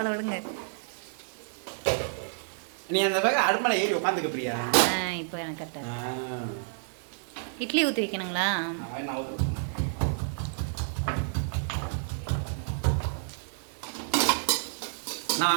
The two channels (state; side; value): silent; left; digital silence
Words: விடுங்க. நீ அந்த பக்கம் அடுமலை ஏறி உட்காந்துக்க பிரியா. இப்போ எனக்கு கரெக்டாக. இட்லி ஊற்றி வைக்கணுங்களா?